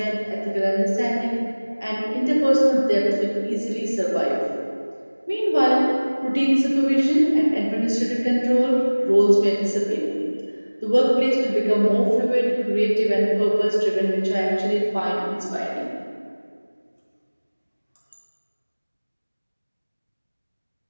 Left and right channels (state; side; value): inverted; both; correlation -1.00